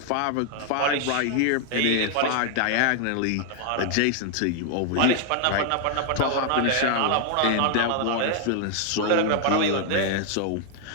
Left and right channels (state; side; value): different; both; correlation 0.00